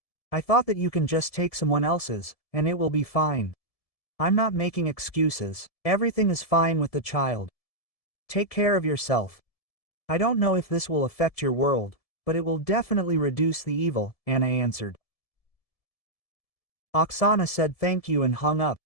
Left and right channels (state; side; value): late; right; 1.7 ms